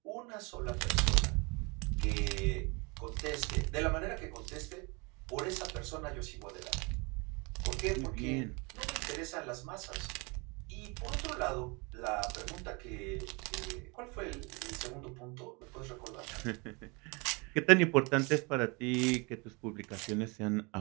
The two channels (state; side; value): quieter; left; 29.1 dB